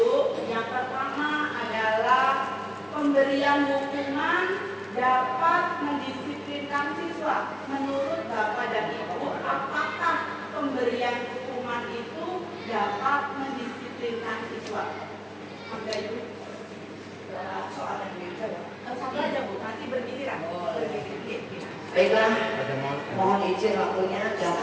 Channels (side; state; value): both; identical; correlation 1.00